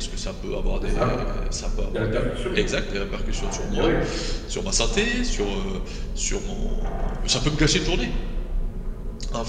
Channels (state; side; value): identical; both; correlation 1.00